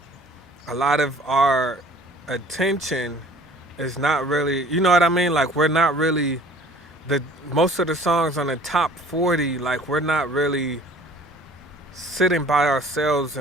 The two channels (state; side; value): normal; both; correlation 0.50